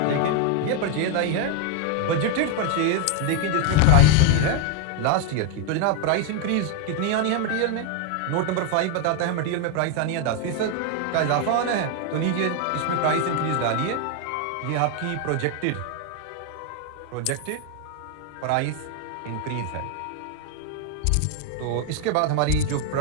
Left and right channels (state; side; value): different; both; correlation 0.01